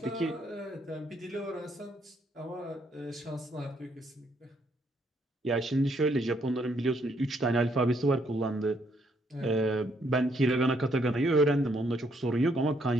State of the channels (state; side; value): normal; both; correlation 0.71